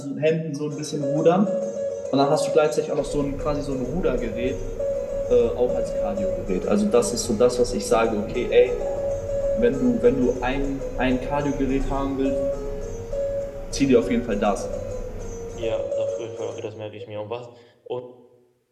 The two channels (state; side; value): identical; both; correlation 1.00